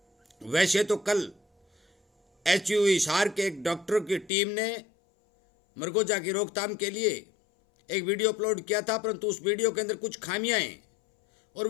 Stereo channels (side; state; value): right; drops out; at 4.3 s